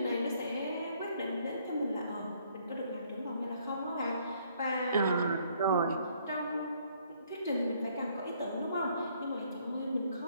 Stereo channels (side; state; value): both; inverted; correlation -0.65